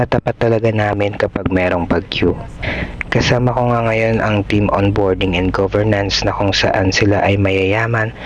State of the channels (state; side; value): identical; both; correlation 1.00